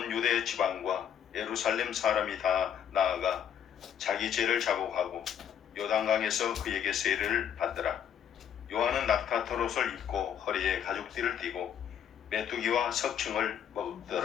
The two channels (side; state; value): right; quieter; 9.0 dB